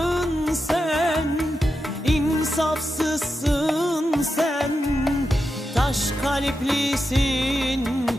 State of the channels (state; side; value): normal; both; correlation 0.89